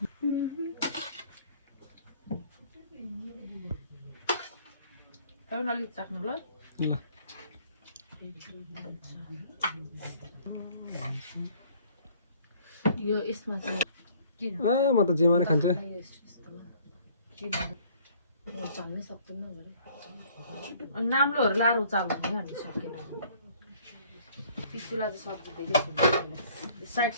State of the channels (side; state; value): both; inverted; correlation -0.57